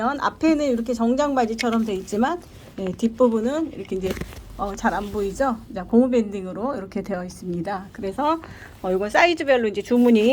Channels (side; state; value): both; identical; correlation 1.00